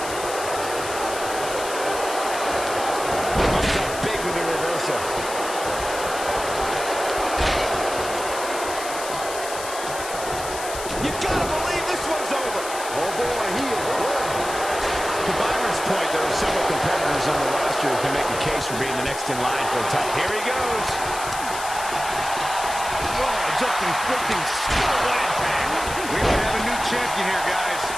Comes up big with the reversal. You gotta believe this one's over. Oh boy, he is rolling. To Byron's point, there are several competitors on the roster who can make a case for being the next in line for a title. Here he goes. Oh, just inflicting skill. What impact. We may have a new champion here, guys.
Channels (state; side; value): noise; left; hiss, 9 dB below the sound